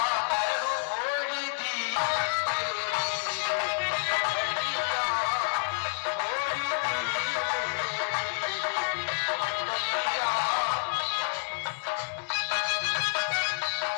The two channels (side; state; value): right; silent; 59 dB below the other